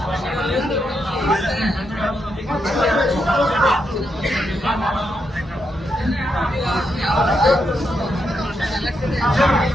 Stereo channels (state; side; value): normal; both; correlation 0.82